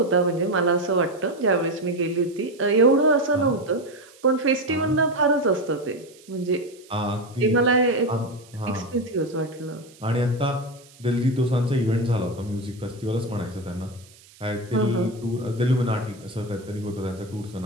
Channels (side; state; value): right; noise; hiss, 25 dB below the sound